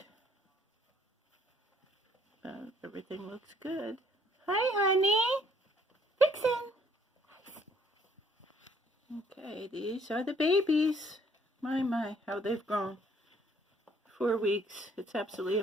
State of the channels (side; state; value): both; normal; correlation 0.64